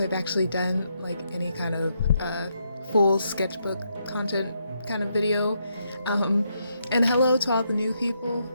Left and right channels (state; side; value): inverted; both; correlation -0.78